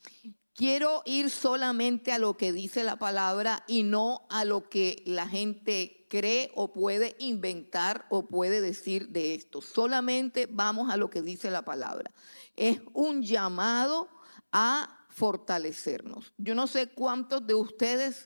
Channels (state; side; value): inverted; both; correlation -1.00